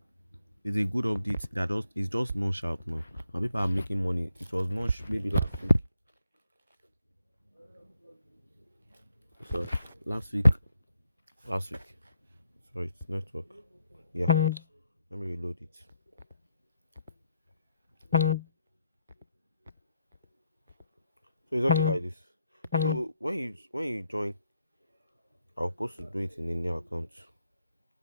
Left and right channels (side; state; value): both; inverted; correlation -0.77